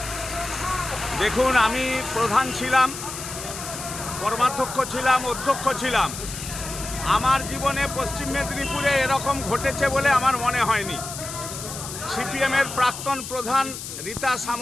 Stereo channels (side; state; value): left; noise; hiss, 9 dB below the sound